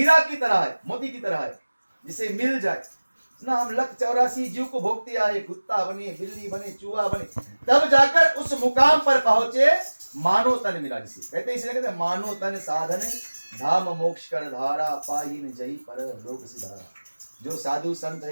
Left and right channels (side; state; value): both; inverted; correlation -1.00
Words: की तरह है, मोती की तरह है, जिसे मिल जाए ना हम 184 जीव को भोगते आए, कुत्ता बने, बिल्ली बने, चूहा बने, तब जाकर उस मुकाम पर पहुंचे मानो तन मिला। जिसे कहते हैं, इसलिए कहते हैं मानो तन साधन धाम मोक्ष कर धारा, पाहीन जही पर लोक सिधारा। जो साधु संत